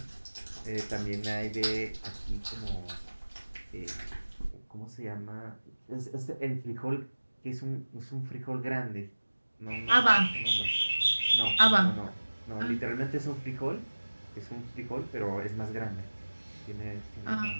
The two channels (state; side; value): inverted; both; correlation -1.00